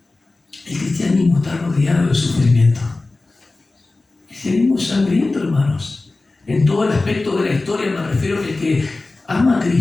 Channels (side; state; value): right; quieter; 3.3 dB